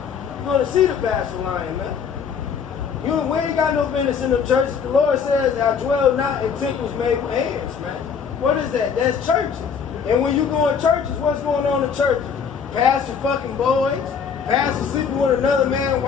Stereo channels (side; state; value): right; quieter; 6.6 dB